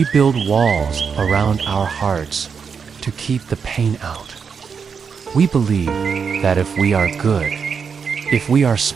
build walls around our hearts to keep the pain out. We believe that if we are good, if we are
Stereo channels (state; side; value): quieter; left; 6.2 dB